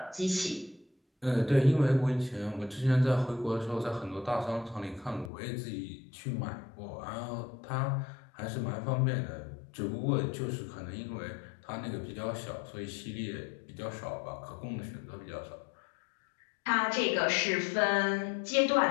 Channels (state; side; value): drops out; right; at 5.3 s